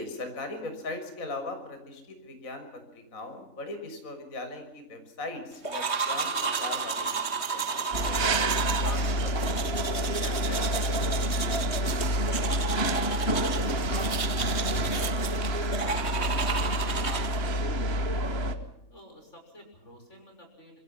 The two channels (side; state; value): right; late; 3.2 ms